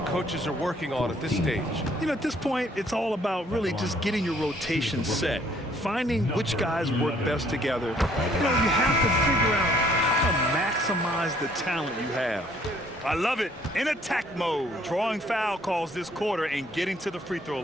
coaches are working on at this stage? You know, at this point, it's all about really just getting your rotation set, finding which guys work best together. You know, you have to figure out how to maximize the talent you have. I love it. In attack mode, drawing foul calls this quarter and getting to the free throw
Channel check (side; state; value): both; normal; correlation 0.63